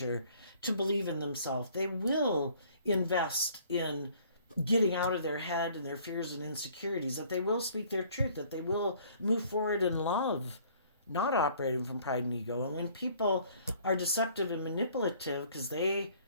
to believe in themselves. They will invest in getting out of their head and their fears and insecurities, that they will speak their truth, that they will move forward in love, not operating from pride and ego. And when people are deceptive and manipulative because they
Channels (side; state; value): both; inverted; correlation -0.57